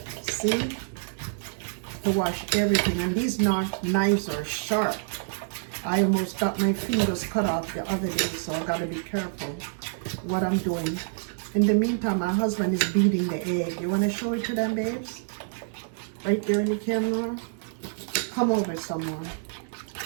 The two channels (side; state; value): left; silent; 60 dB below the other